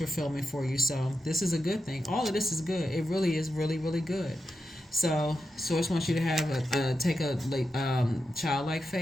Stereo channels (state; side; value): normal; both; correlation 0.88